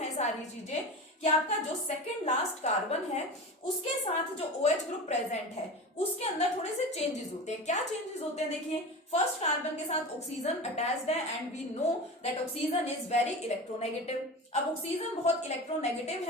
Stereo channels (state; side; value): normal; both; correlation 0.29